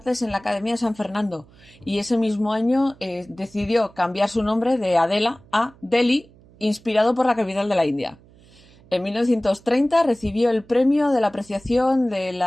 en la Academia de San Fernando. Y ese mismo año decidió cambiar su nombre de Adela a Delhi, inspirado por la capital de la India. En 1930 recibió el premio de la apreciación de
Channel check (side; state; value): right; noise; hum, 27 dB below the sound